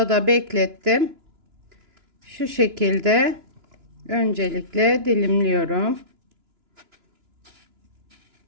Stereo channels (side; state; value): left; late; 2.9 ms